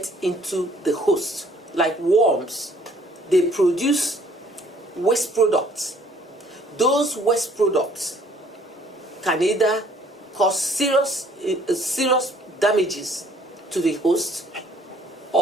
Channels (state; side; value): normal; both; correlation 0.60